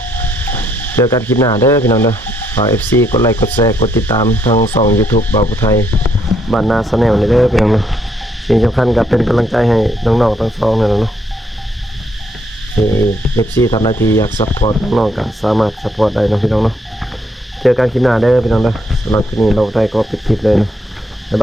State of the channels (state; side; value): normal; both; correlation 0.73